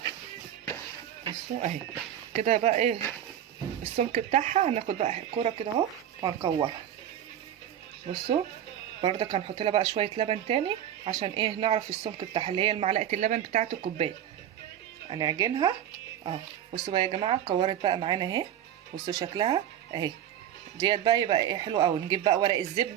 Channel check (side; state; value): left; quieter; 10.7 dB